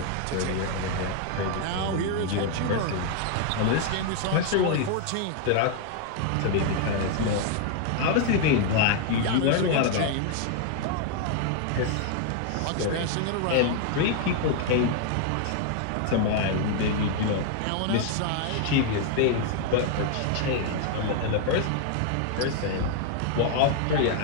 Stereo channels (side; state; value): both; different; correlation 0.00